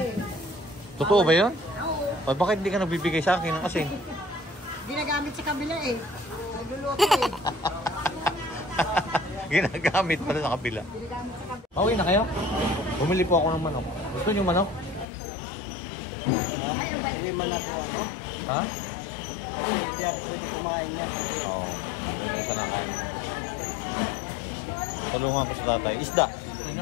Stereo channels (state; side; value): drops out; right; at 15.1 s